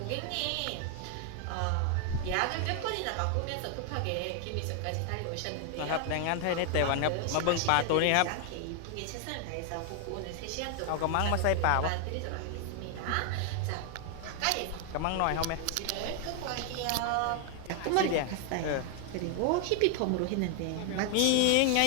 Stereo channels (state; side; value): different; both; correlation 0.00